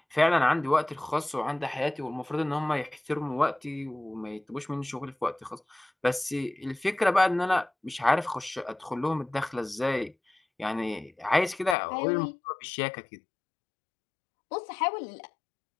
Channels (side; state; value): right; drops out; at 11.8 s